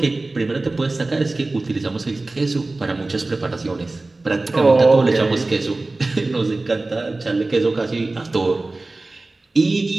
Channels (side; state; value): left; quieter; 3.1 dB